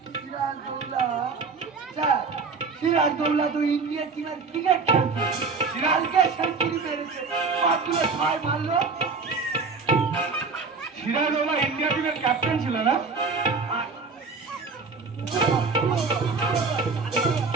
সিরাজদৌল্লা স্যার সিরাজদৌল্লা তো ইন্ডিয়া টিমের ক্রিকেট খেলছে কালকে সেঞ্চুরি মেরেছে কতগুলো ছয় মারলো সিরাজদৌল্লা ইন্ডিয়া টিমের ক্যাপ্টেন ছিল না?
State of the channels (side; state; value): left; quieter; 4.6 dB